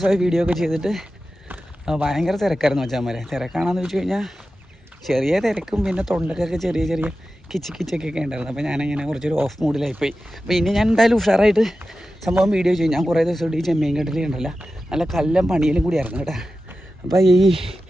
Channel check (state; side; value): normal; both; correlation 0.93